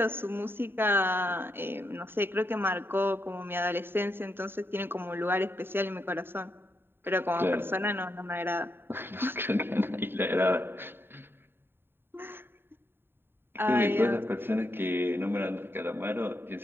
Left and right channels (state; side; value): late; left; 0.11 ms